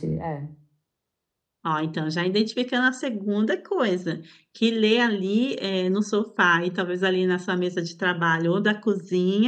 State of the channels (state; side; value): identical; both; correlation 1.00